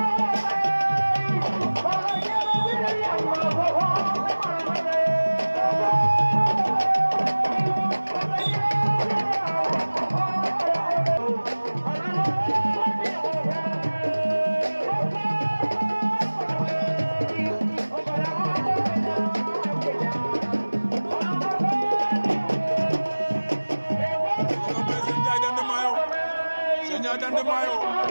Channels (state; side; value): inverted; both; correlation -1.00